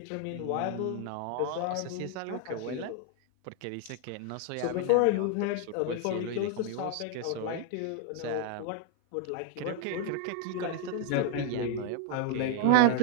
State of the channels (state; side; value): different; both; correlation 0.00